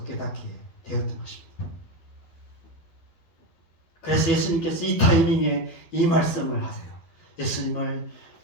깨닫게 되었던 것입니다. 그래서 예수님께서 이 타이밍에 이 말씀을 하세요. 예수님을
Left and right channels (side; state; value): right; late; 12 ms